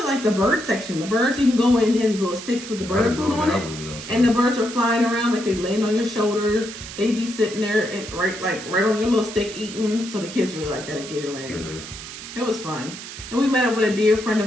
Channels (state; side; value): noise; right; hiss, 12 dB below the sound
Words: like the bird section. The birds, you can go in, there's these little sticks with the bird food on it, and the birds are flying around like they land on your shoulders. They be sitting there and right on your little stick eating. So the kids really like that at Gatorland. Yeah. It was fun, and we met up with a dear friend